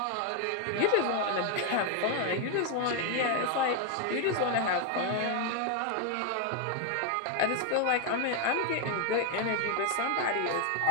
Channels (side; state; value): both; different; correlation 0.01